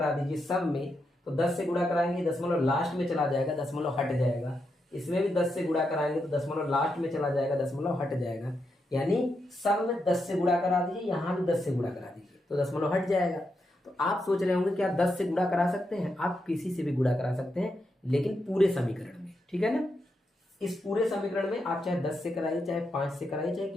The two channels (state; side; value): normal; both; correlation 0.84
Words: दीजिए सब में। तो 10 से गुणा कराएंगे दशमलव लास्ट में चला जाएगा, दशमलव हट जाएगा। इसमें भी 10 से गुणा कराएंगे तो दशमलव लास्ट में चला जाएगा, दशमलव हट जाएगा। यानी सब में 10 से गुणा करा दीजिए, यहाँ भी 10 से गुणा करा दीजिए तो दशमलव हट जाएगा। तो आप सोच रहे होंगे क्या 10 से गुणा करा सकते हैं? आप किसी से भी गुणा करा सकते हैं, लेकिन पूरे समीकरण में, ठीक है ना। इस पूरे समीकरण में आप चाहे 10 से कराइए, चाहे 5 से कराइए, चाहे